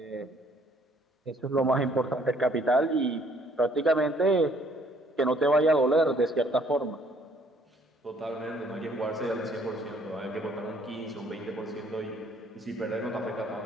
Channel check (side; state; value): both; normal; correlation 0.62